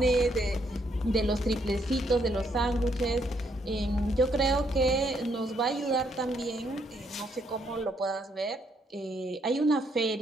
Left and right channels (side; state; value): both; normal; correlation 0.72